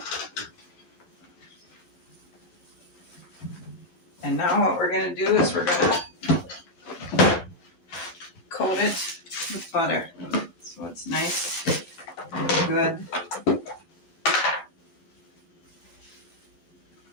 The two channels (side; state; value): right; late; 12 ms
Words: And now what we're going to do is we're going to coat it with butter so it's nice and good.